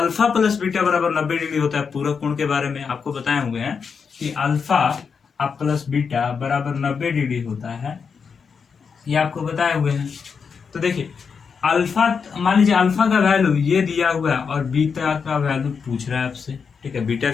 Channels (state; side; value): quieter; right; 5.9 dB